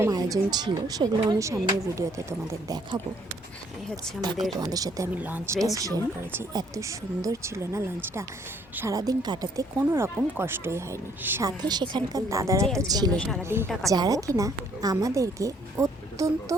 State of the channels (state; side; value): normal; both; correlation 0.64